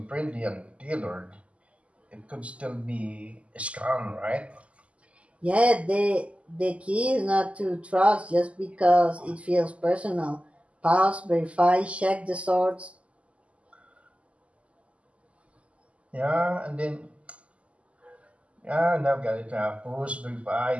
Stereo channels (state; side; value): late; left; 0.063 ms